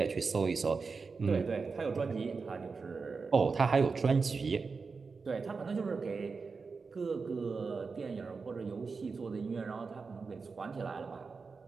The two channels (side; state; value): left; quieter; 4.7 dB